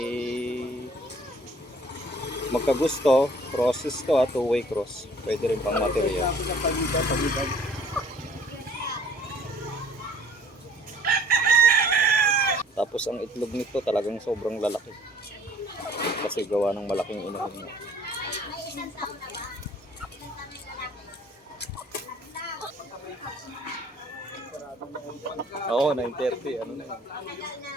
magkagusto, crosses to, two-way cross. Pwede rin pang material. Tapos ang itlog nito talagang sobrang lalaki. Kasi gawa ng malaking inahin niya. Oo, 9:30. Ano na yun?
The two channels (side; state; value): both; normal; correlation 0.55